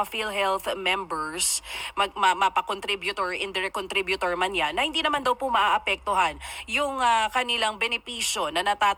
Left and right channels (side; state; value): both; identical; correlation 1.00